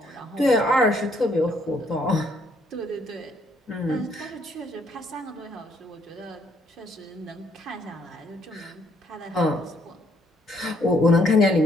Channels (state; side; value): normal; both; correlation 0.68